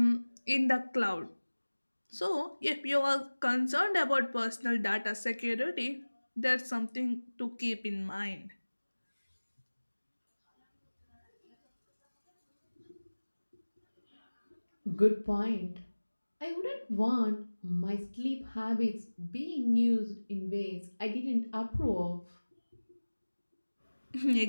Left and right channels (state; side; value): inverted; both; correlation -1.00